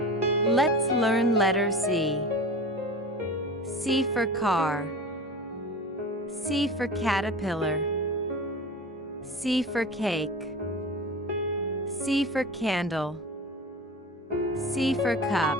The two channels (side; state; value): both; normal; correlation 0.33